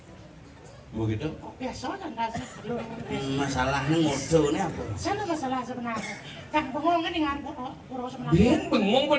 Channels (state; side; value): identical; both; correlation 1.00